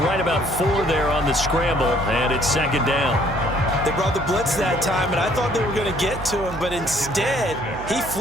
right about 4 there on the scramble, and it's second down. They brought the blitz that time, and I thought they were going to get to him, but instead, he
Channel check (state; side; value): noise; right; hum, 11 dB below the sound